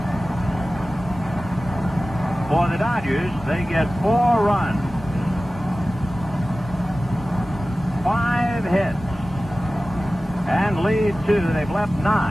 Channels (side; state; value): both; normal; correlation 0.96